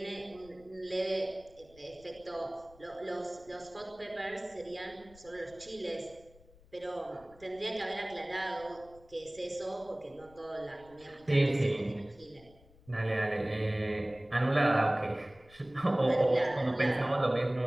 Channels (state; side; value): noise; left; rumble, 25 dB below the sound